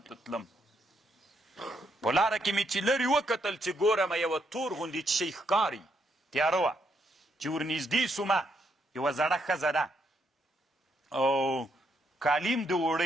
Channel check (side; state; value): both; normal; correlation 0.76